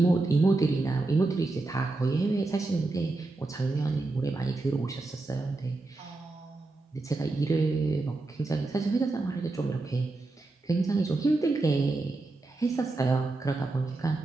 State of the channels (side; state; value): left; quieter; 3.2 dB